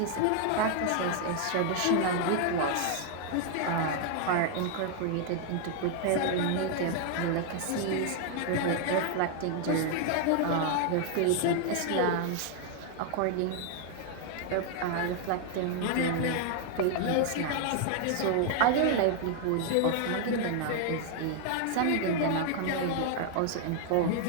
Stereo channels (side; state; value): both; different; correlation 0.00